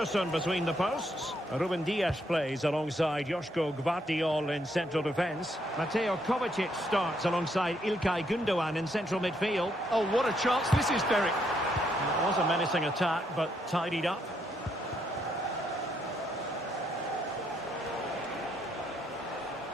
between the posts. Ruben Dias plays alongside Joško Gvardiol in central defence. Mateo Kovacic starts alongside Ilkay Gundogan in central midfield. Oh, what a chance this is, Derek. It was a menacing attack, but tidied up.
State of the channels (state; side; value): normal; both; correlation 0.74